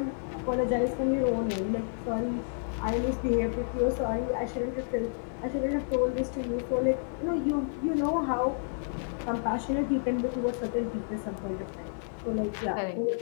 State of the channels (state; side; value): silent; right; digital silence